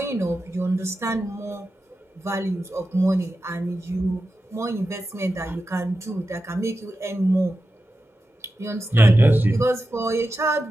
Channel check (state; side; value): normal; both; correlation 0.91